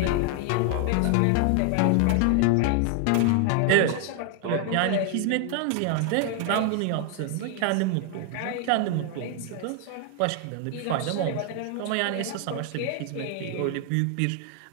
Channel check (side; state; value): both; different; correlation 0.00